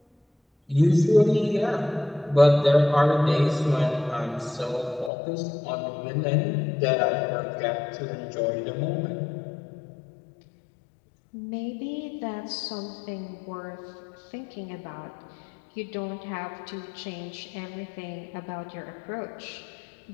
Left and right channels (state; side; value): drops out; right; at 5.1 s